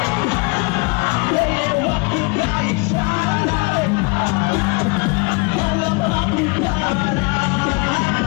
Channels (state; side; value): quieter; right; 29.8 dB